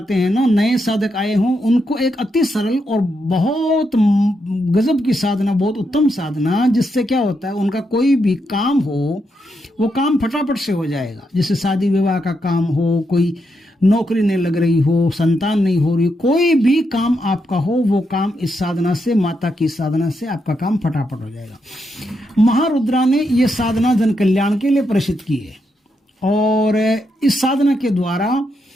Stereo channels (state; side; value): normal; both; correlation 0.82